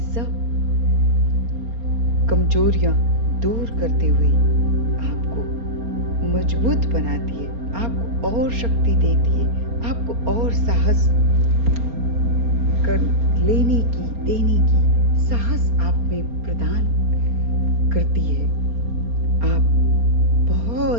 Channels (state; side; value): late; left; 4.3 ms